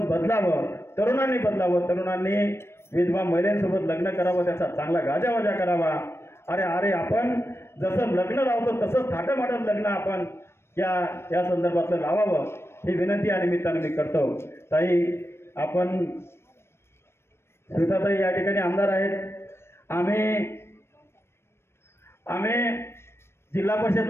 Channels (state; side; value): late; right; 0.12 ms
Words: बदलावं, तरुणांनी बदलावं, तरुणांनी विधवा महिलांसोबत लग्न करावं, त्याचा चांगला गाजावाजा करावा. अरे आपण जसं लग्न लावतो तसंच थाटामाटात लग्न आपण या संदर्भातलं लावावं ही विनंती या निमित्तानं मी करतो. ताई, आपण स्मिताताई या ठिकाणी आमदार आहेत. आम्ही जिल्हा परिषद